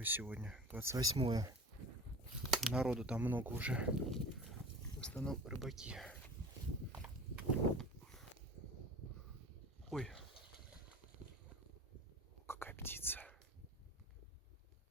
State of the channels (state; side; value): normal; both; correlation 0.39